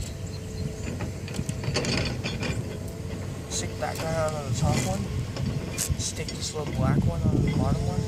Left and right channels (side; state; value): both; identical; correlation 1.00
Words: Stick that guy on the top one. Stick this little black one on the bottom one.